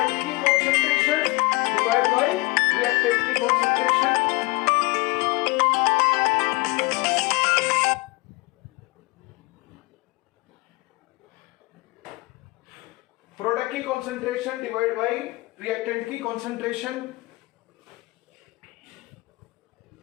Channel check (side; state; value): right; quieter; 24.1 dB